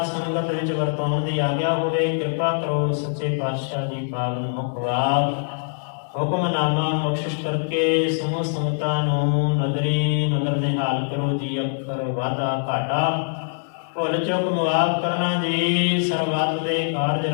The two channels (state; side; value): silent; right; digital silence